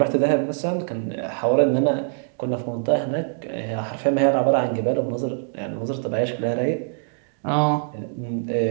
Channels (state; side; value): silent; left; digital silence